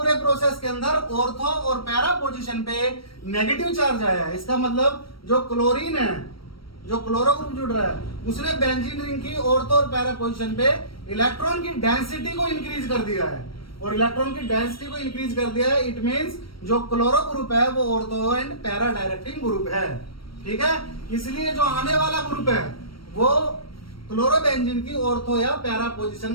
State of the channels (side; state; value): right; late; 0.75 ms